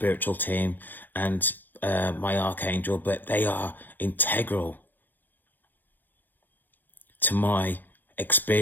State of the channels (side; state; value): right; late; 0.088 ms